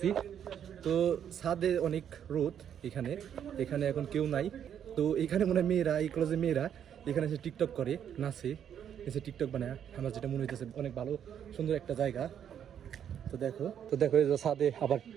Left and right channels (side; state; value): left; quieter; 9.1 dB